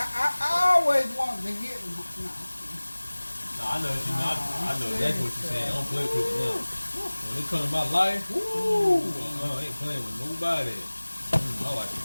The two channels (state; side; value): inverted; both; correlation -1.00